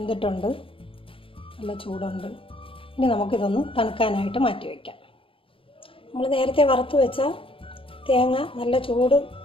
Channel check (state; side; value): late; right; 0.26 ms